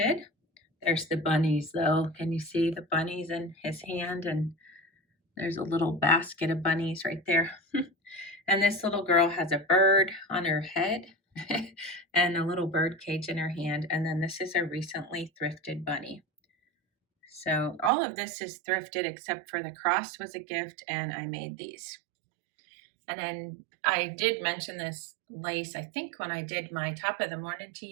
There's the bunnies though. Can you see the bunnies in his hand? And there's a little basket of bunnies right there. And this little girl has a bird on her head and a little bird cage in her hand. And then this is a recently thrifted bunny. So all of this is thrifted except for the cross was a gift, and I made these. And then I did mention this lace. I think when I did my top of the morning to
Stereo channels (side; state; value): left; drops out; at 17.9 s